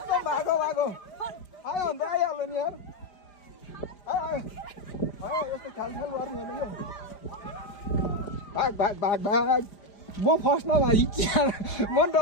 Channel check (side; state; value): right; late; 5.0 ms